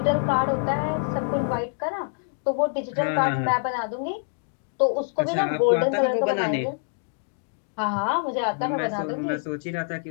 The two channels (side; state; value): right; silent; digital silence